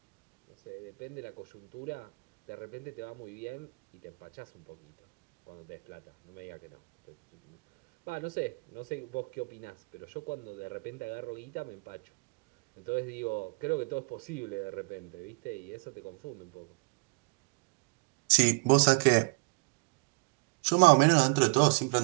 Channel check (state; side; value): quieter; left; 31.2 dB